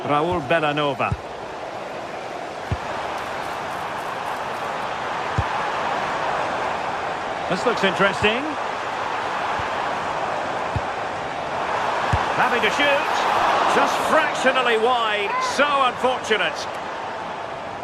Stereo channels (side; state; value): both; identical; correlation 1.00